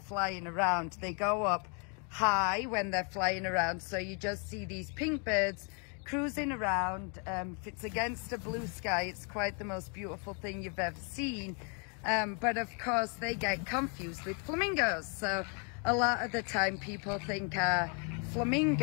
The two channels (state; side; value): quieter; right; 37.6 dB